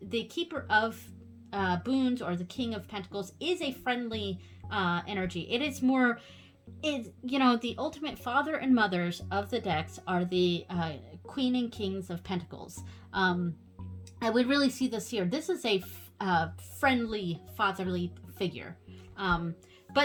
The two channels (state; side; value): identical; both; correlation 1.00